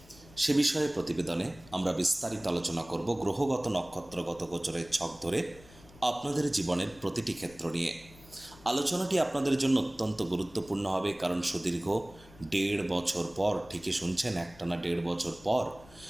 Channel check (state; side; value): noise; left; rumble, 22 dB below the sound